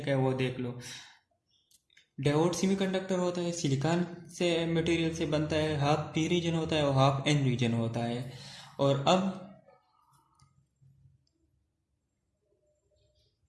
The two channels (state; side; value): identical; both; correlation 1.00